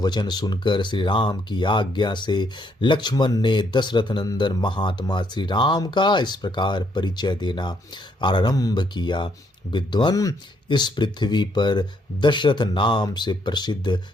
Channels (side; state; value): both; normal; correlation 0.72